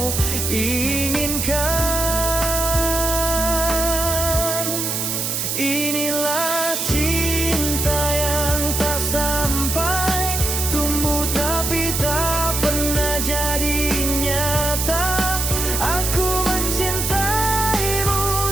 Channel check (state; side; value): noise; right; hiss, 1 dB below the sound